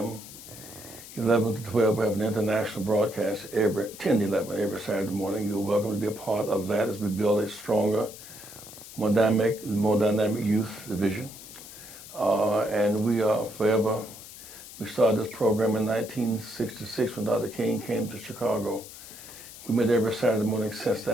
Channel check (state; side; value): noise; left; hiss, 15 dB below the sound